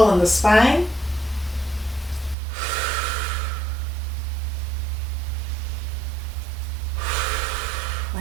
in the spine.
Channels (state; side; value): drops out; left; at 2.4 s